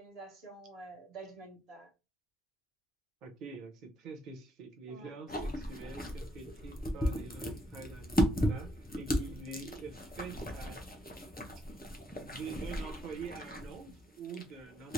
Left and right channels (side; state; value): both; normal; correlation 0.76